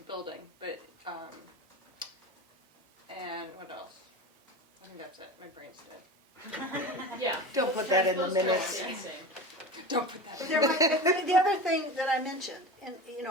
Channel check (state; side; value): normal; both; correlation 0.30